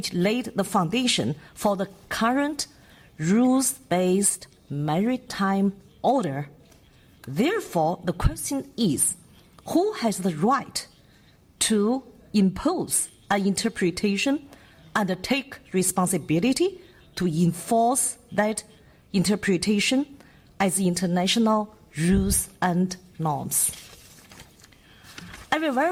laid the foundation for the current rules-based maritime order. Therefore, the question is, who has the right to impose an interpretation and take responsibility to enforce that interpretation as international rules and norms? I will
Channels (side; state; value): both; identical; correlation 1.00